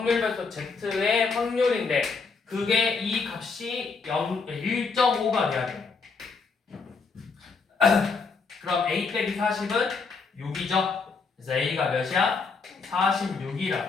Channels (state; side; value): quieter; right; 4.7 dB